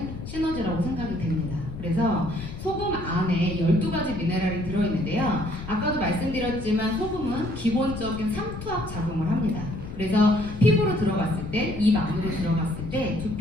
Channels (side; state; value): left; noise; rumble, 10 dB below the sound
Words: 시너지라고 생각이 됩니다. 그래서 소금 안에 12가지 미네랄이 들어있는데요. 아까도 말씀드렸지만 소금은 기본적인 상투압 작용을 합니다. 그래서 피부로 들어갔을 때, 입 안으로 들어갔을 때,